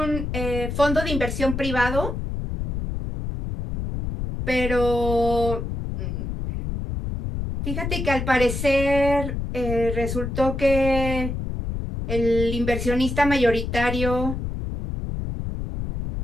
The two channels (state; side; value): noise; left; rumble, 4 dB below the sound